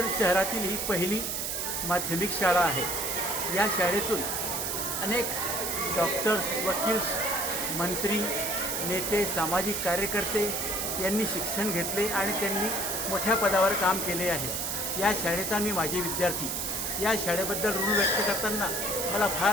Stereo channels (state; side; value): noise; right; hiss, 1 dB below the sound